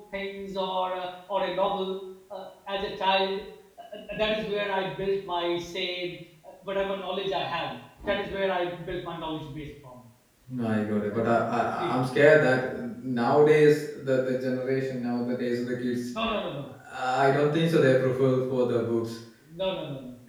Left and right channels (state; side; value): identical; both; correlation 1.00